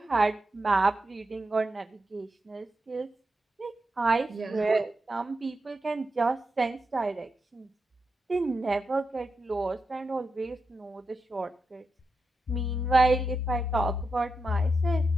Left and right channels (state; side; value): normal; both; correlation 0.87